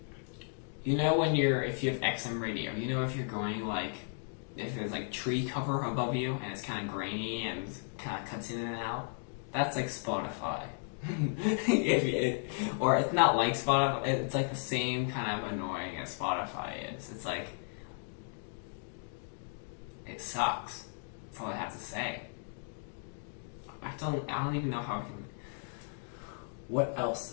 If you have XM radio, if you're going like, if there's like tree cover above you and it's kind of grainy and kind of cuts in and out, that's like Spotify. Or it's not like Spotify, it's like the same kind of annoying as Spotify is. It's like, it sucks. That's all I have to say. I don't even know how I can... What else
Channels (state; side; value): silent; right; 55 dB below the other